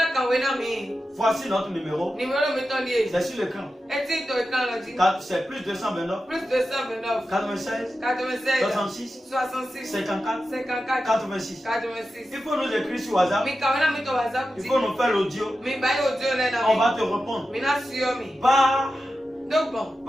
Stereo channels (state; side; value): normal; both; correlation 0.92